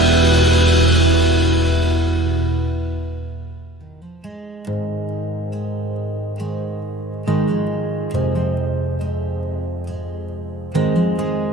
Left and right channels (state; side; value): normal; both; correlation 0.50